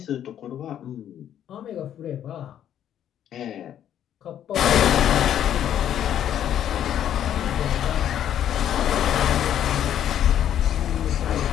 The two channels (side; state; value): right; quieter; 10.4 dB